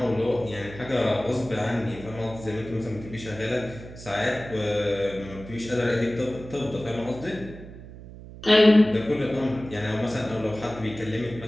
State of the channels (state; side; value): noise; right; hum, 15 dB below the sound